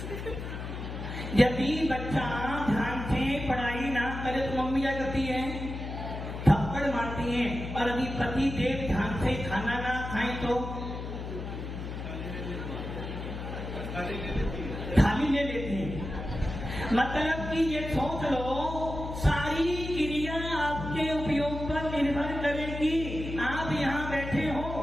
यदि बच्चा ध्यान से पढ़ाई ना करे तो मम्मी क्या करती है? थप्पड़ मारती है। और यदि पति देव ध्यान से खाना ना खाए तो थाली ले लेती है। मतलब कि ये सोच लो, सारी क्रिया आपके उपयोग पर निर्भर करेगी। आप यहाँ बैठे हो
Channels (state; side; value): noise; left; hum, 7 dB below the sound